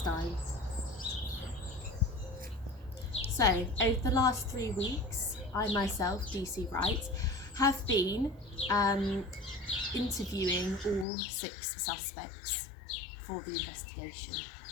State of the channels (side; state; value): right; drops out; at 11.1 s